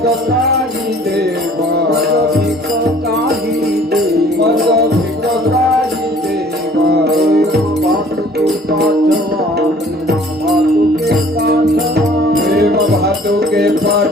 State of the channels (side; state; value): both; normal; correlation 0.53